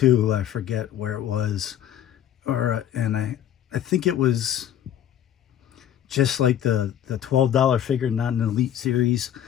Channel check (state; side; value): quieter; right; 10.6 dB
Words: I forget where it was, and I think it was just like the $12 figure, not an Elite Series,